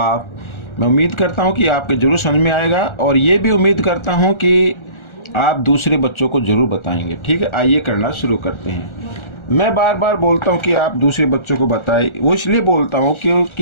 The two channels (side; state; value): right; late; 1.4 ms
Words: मैं उम्मीद करता हूं कि आपके जरूर समझ में आएगा और ये भी उम्मीद करता हूं कि आप दूसरे बच्चों को जरूर बताएंगे। ठीक है, आइए करना शुरू करते हैं। मैं बार बार बोलता हूं कि आप दूसरे बच्चों को बताएं, वो इसलिए बोलता हूं